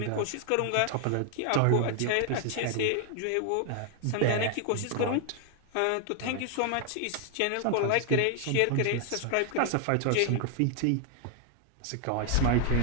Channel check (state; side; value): different; both; correlation 0.00